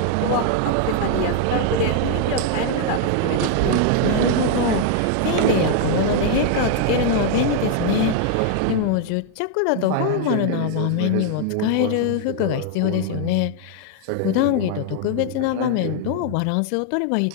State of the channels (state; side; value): different; both; correlation 0.00